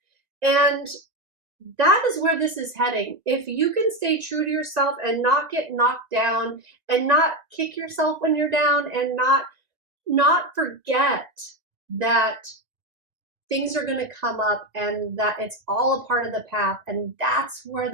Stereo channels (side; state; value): left; late; 1.9 ms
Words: And that is where this is heading. If you can stay true to yourself and not get knocked down, and not kick yourself when you're down, and not forget that things are going to come up, and that it's all a part of the path, and that's where